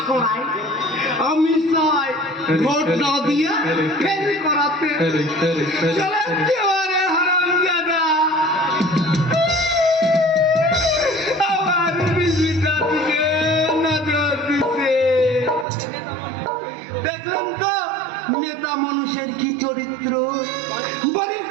করায়? আমি চাই ভোট না দিয়ে ফেল করাতে। হারামজাদা আমার বিজিটা দিকে নজর দিতে। দেখুন তো নেতা মানুষের কি চরিত্র, বাড়ির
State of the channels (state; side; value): drops out; left; at 15.7 s